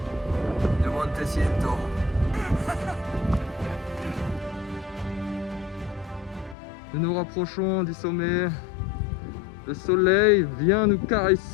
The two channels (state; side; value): drops out; right; at 6.6 s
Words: de Montecento. Nous nous rapprochons du sommet. Le soleil vient nous